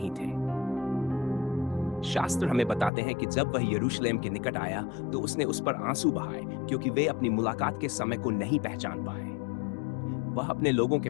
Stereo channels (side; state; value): right; drops out; at 2.9 s